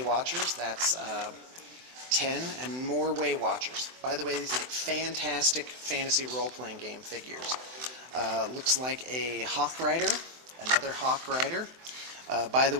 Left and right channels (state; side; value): late; left; 24 ms